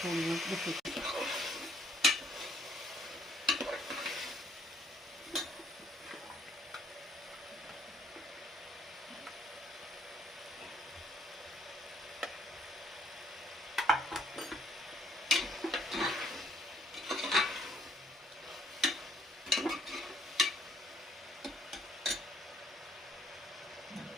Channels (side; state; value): both; normal; correlation 0.65